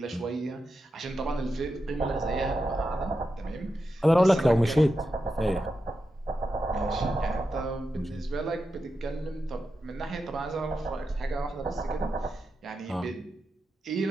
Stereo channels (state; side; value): normal; both; correlation 0.88